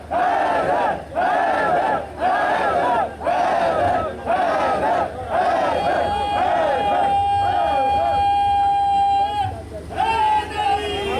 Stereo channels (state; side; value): identical; both; correlation 1.00